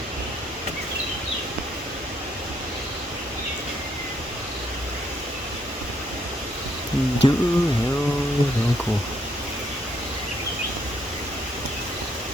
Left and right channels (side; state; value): both; normal; correlation 0.71